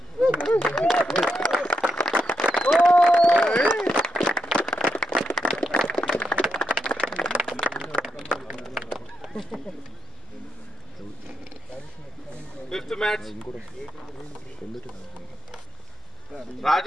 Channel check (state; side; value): normal; both; correlation 0.82